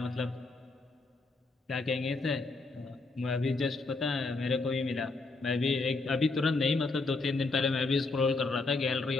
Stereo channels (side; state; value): right; quieter; 3.6 dB